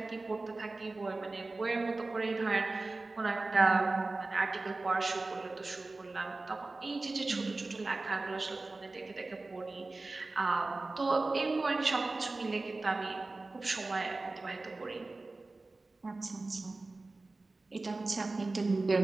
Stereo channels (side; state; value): left; quieter; 3.3 dB